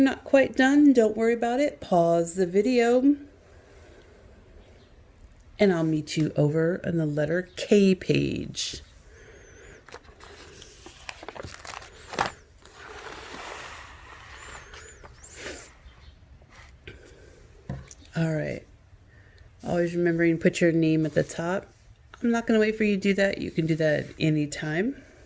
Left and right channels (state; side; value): identical; both; correlation 1.00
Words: quite done, don't worry about it. Pause the video. And I'll meet you over on the letter K page. All right. Always remembering to put your name at the top. I'm not going to wait for you to do that. You can do that at any time.